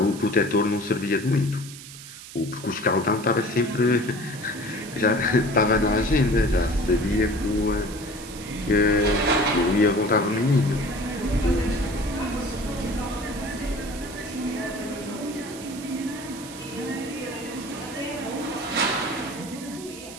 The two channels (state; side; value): noise; right; hiss, 15 dB below the sound